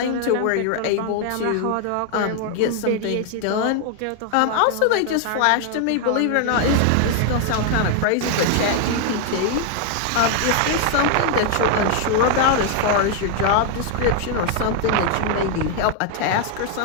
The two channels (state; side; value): different; both; correlation 0.00